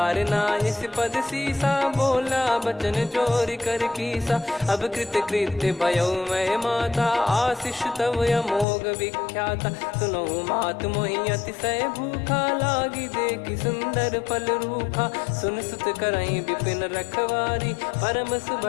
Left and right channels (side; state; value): right; drops out; at 8.7 s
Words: नायस पद सीसा बोला बचन चोरी कर कीसा। अब कृत कृत्य भयो मैं माता आशीष तव अमोघ विख्याता। सुनो मात मोहि अतिशय भूखा लागी देखि सुंदर फल रूखा। सुन सुत करई विपिन रखवारी परम